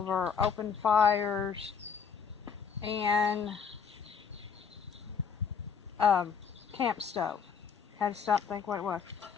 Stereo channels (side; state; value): right; quieter; 6.6 dB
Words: open fires, and camp stove. Had to stop and think what it was.